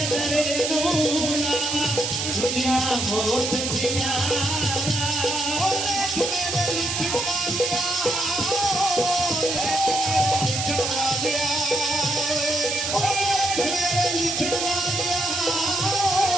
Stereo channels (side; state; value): right; noise; hiss, 2 dB below the sound